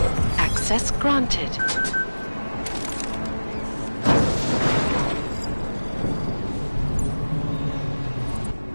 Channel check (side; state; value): both; inverted; correlation -1.00